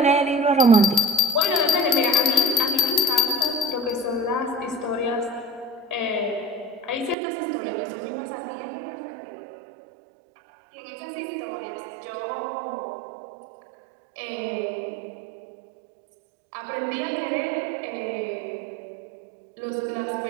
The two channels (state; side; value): drops out; left; at 7.2 s